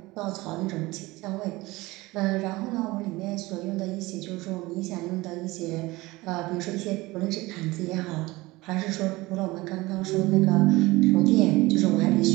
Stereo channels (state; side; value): quieter; left; 20.7 dB